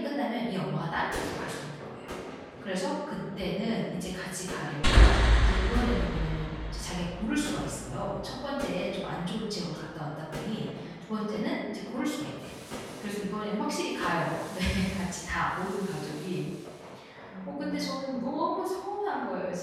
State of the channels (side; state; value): both; identical; correlation 1.00